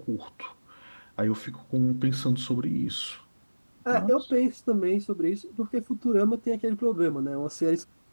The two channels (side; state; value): both; inverted; correlation -1.00